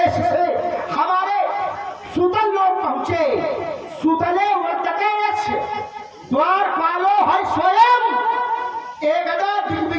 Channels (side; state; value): both; identical; correlation 1.00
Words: से हमारे सुतल लोग पहुंचे। सुतले वर्तते द्वारपालो है स्वयं, एकदा